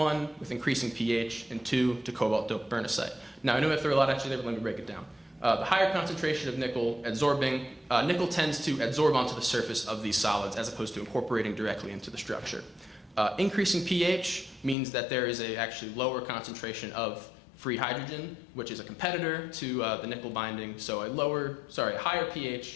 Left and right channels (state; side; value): drops out; right; at 14.8 s